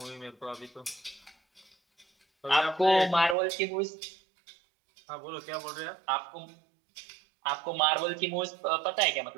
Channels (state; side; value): drops out; left; at 3.4 s